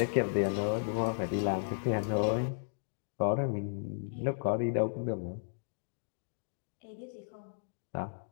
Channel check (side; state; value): right; silent; digital silence